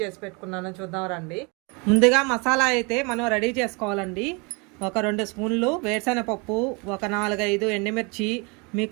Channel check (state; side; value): quieter; left; 30.5 dB